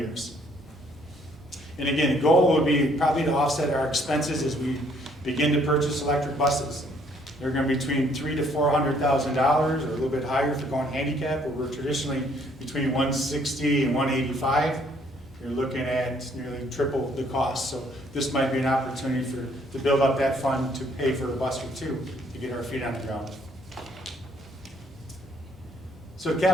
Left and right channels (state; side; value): normal; both; correlation 0.65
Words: And again, the goal would be probably to offset our expenses as we begin to purchase electric buses. They're going to be between $300,000 to $400,000, or a little bit higher if you're going handicap, where we're traditionally between $160,000 and $185,000. You're looking at nearly triple the cost. So this might be an opportunity to build up that fund to pay for a bus or two to get our feet on the ground. So